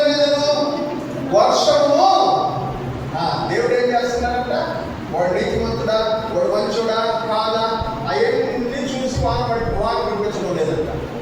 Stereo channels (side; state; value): both; identical; correlation 1.00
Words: మీదను వర్షము. దేవుడు ఏం చేస్తున్నాడంట? వాడు నీతిమంతుడా, వాడు మంచుడా కాదా, అవన్నీ చూసి వాన పంపించడం లేదంట.